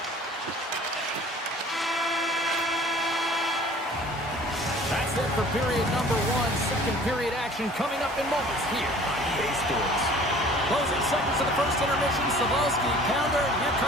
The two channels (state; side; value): normal; both; correlation 0.49